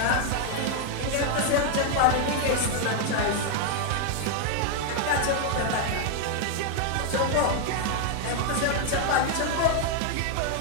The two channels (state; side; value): different; both; correlation 0.00